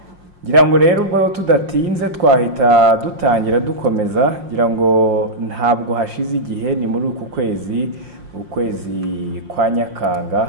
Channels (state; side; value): late; left; 5.6 ms